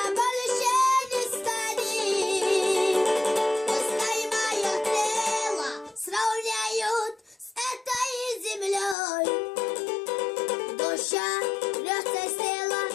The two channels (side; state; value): right; drops out; at 9.0 s